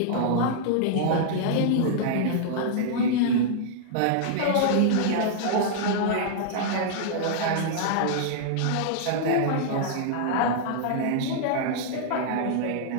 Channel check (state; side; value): different; both; correlation -0.02